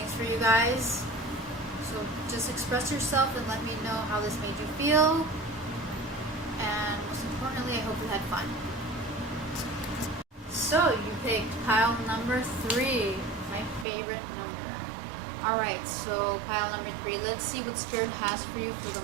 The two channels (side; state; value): left; drops out; at 13.9 s